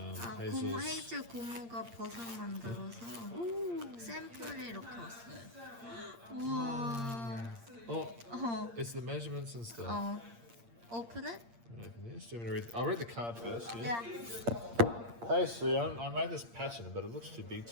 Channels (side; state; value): left; late; 8.6 ms